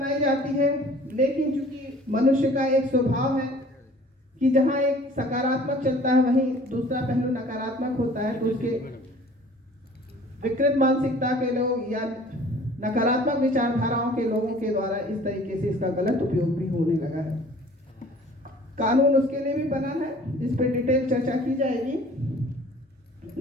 जाती है, लेकिन चूंकि मनुष्य का एक स्वभाव है कि जहां एक सकारात्मक चलता है वहीं दूसरा पहलू नकारात्मक होता है, तो उसके विकृत मानसिकता के लोग या नकारात्मक विचारधाराओं के लोगों के द्वारा इस तरीके से इसका गलत उपयोग भी होने लगा है। कानून उसके लिए भी बना है, इस पर डिटेल चर्चा की जाएगी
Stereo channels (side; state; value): both; normal; correlation 0.50